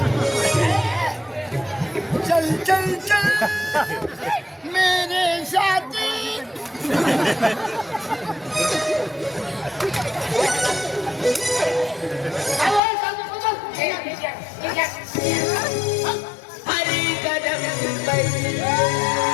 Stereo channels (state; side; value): drops out; right; at 12.8 s